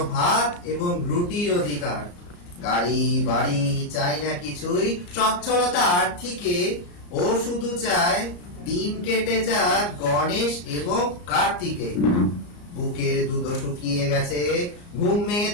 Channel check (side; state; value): right; late; 34 ms